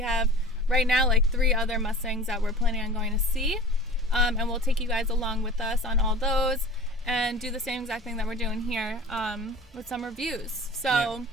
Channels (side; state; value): both; normal; correlation 0.40